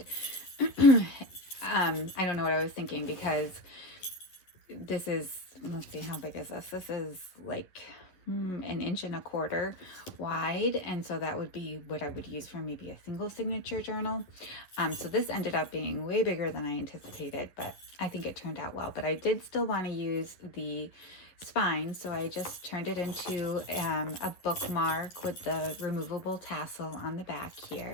I don't know what I was thinking, because this is, let's see, how big is this? This is like 1.25 inches wide, and so that would be what I would use for maybe a single signature journal. So this ended up being way bigger than I anticipated, but I think it turned out well. But I did still want to use the spine, so I just turned it into a bookmark with the removable tassel on the back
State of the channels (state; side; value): late; right; 11 ms